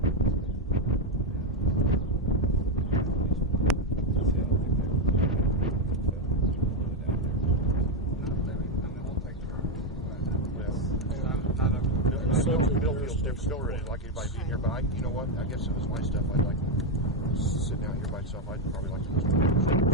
We'll take care of it. Bill feels different. Bill really like anybody being here, but you know what? I guess if it's my stuff, I'd like sitting out here by myself. I'd probably like to just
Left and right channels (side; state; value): both; normal; correlation 0.05